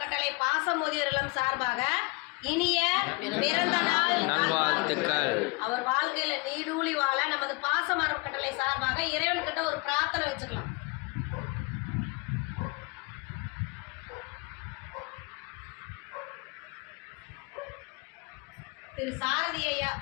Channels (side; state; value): right; quieter; 27.3 dB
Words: பாசமுதியோர் இல்லம் சார்பாக இனிய பிறந்த நாள் நல்வாழ்த்துக்கள். அவர் வாழ்க்கையில நீடூழி வாழ நமது பாசம் அறக்கட்டளை சார்பாக இறைவன்கிட்ட ஒரு பிரார்த்தனை வச்சுக்கலாம். திரு சாரதி ஐயா